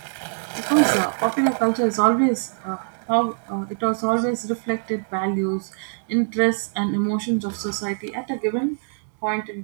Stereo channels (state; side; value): silent; left; 63 dB below the other